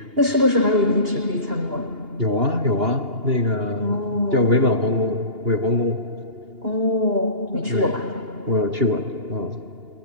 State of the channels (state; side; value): late; left; 2.8 ms